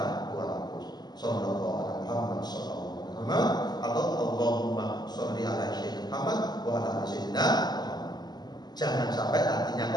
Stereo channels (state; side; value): late; right; 0.20 ms